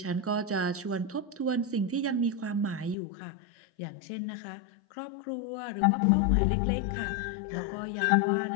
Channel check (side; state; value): right; drops out; at 3.0 s